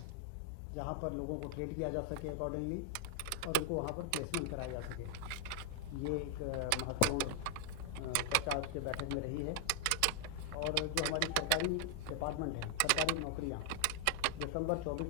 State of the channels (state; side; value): different; both; correlation 0.00